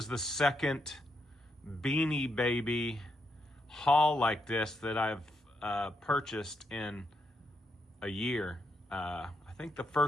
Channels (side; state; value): both; normal; correlation 0.80